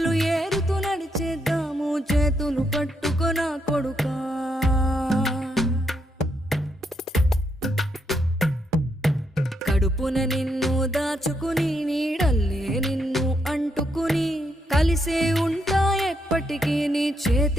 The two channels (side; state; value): both; normal; correlation 0.78